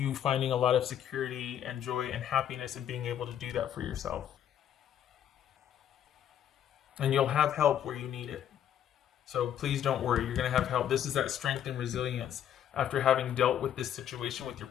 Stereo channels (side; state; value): right; quieter; 10.2 dB